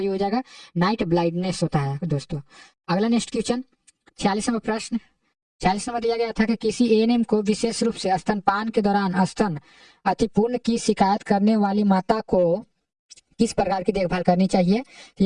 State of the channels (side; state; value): both; identical; correlation 1.00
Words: हो जाएगा, नाइट ब्लाइंडनेस होता है दोस्तों। अगला नेक्स्ट क्वेश्चन 46 नंबर प्रश्न 46 नंबर दिया गया था कि किसी ANM को विशेष रूप से स्तनपान के दौरान स्तन अतिपूर्ण की शिकायत करने वाली माता को किस प्रकार की देखभाल करनी चाहिए?